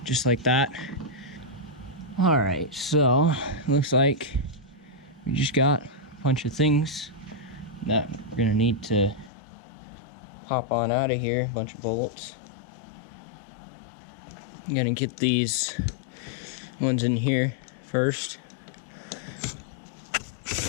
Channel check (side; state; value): right; drops out; at 9.3 s